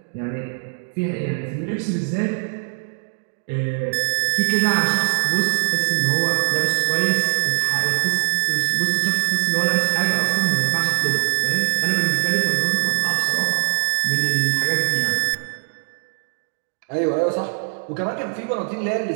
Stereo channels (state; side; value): silent; left; digital silence